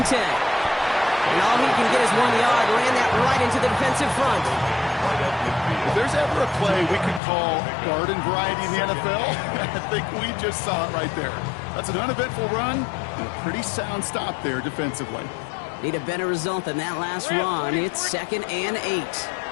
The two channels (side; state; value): right; drops out; at 7.2 s